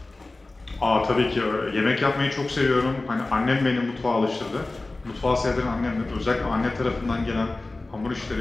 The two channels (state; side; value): quieter; right; 3.1 dB